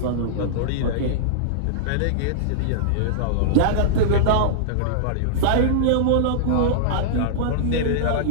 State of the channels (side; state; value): both; different; correlation -0.02